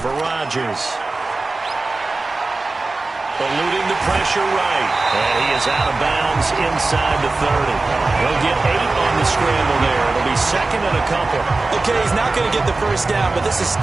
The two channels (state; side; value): quieter; left; 3.4 dB